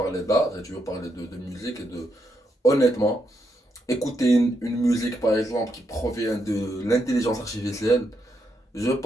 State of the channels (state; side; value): normal; both; correlation 0.80